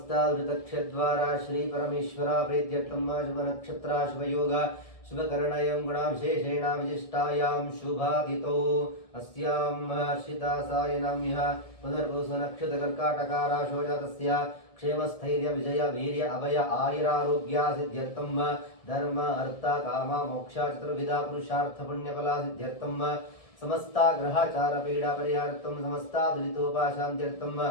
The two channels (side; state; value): right; late; 1.7 ms